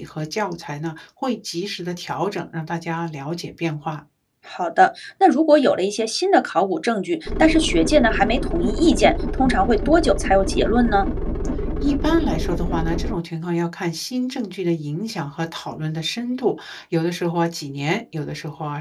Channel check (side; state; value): both; identical; correlation 1.00